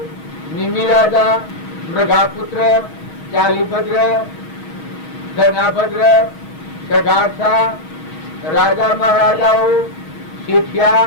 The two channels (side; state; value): right; late; 6.3 ms